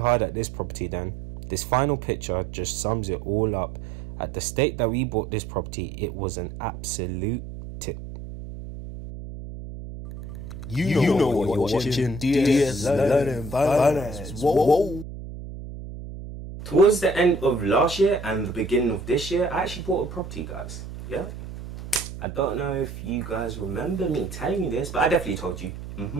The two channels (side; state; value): right; noise; hum, 10 dB below the sound